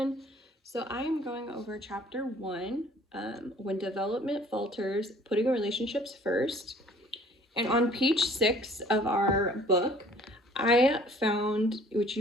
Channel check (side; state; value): both; normal; correlation 0.54